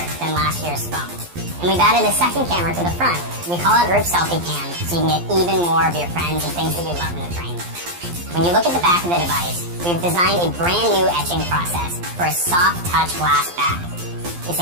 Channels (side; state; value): left; late; 12 ms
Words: than last year's phone. And we've added a second camera to the front. We call it Rip Selfie Cam, so you can get even more of your friends and things that you love in the train. When you look at the back of the device, we've designed a brand new etching process for a soft touch glass back.